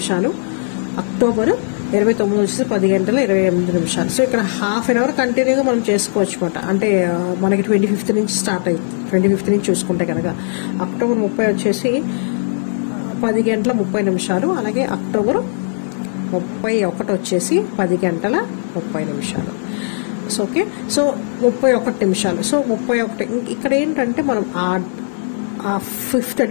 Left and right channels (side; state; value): right; silent; digital silence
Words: October 29 వచ్చేసి 10 గంటల 28 నిమిషాలు. సో ఇక్కడ హాఫ్ అన్ అవర్ కంటిన్యూగా మనం చేసుకోవచ్చు అనమాట. అంటే మనకి 25th నుంచి స్టార్ట్ అయింది, 25th నుంచి చూసుకుంటే కనుక. October 30 వచ్చేసి 10 గంటల 30 నిమిషాలు, అలాగే October 31 వచ్చేసి 10 గంటల 30 నిమిషాలు. సో ఓకే, సో 31 నిమిషాలు. సో 31 ఇక్కడ ఏంటంటే మనం ఆ 5th